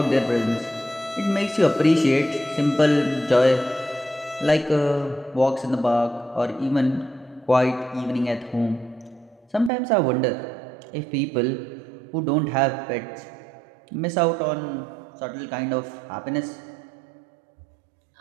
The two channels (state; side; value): drops out; left; at 9.7 s